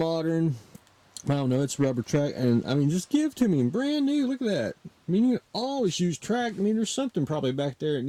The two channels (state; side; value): identical; both; correlation 1.00